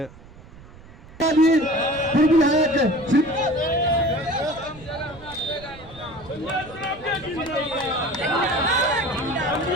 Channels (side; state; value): right; noise; rumble, 20 dB below the sound